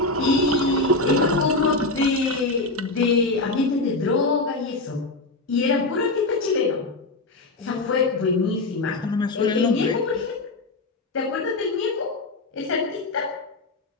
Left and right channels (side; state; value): right; quieter; 3.1 dB